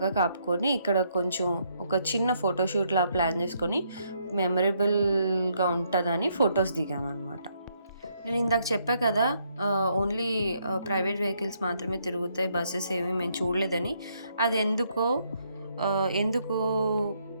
కాపుకొని ఇక్కడ కొంచెం ఒక చిన్న ఫోటోషూట్లా ప్లాన్ చేసుకొని మెమరబుల్గా ఉంటుందని ఫొటోస్ దిగామన్నమాట. నేను ఇందాక చెప్పా కదా ఓన్లీ ప్రైవేట్ వెహికల్స్ మాత్రమే తిరుగుతాయి, బస్సెస్ ఏమీ మేము చూడలేదని. అది ఎందుకు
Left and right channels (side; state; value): both; inverted; correlation -0.73